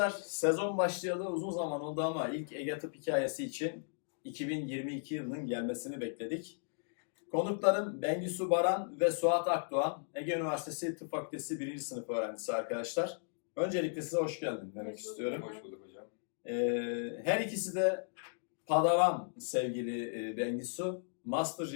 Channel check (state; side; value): silent; right; digital silence